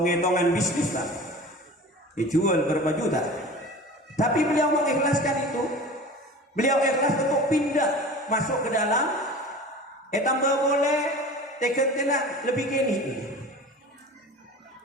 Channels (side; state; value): both; normal; correlation 0.38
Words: bisnis lah, dijual berapa juta, tapi beliau mengikhlaskan itu. Beliau ikhlas untuk pindah masuk ke dalam, tambah boleh tekan tenang lebih gini.